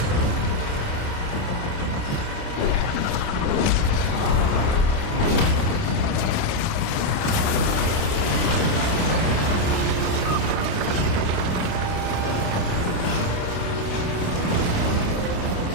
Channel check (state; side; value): late; right; 29 ms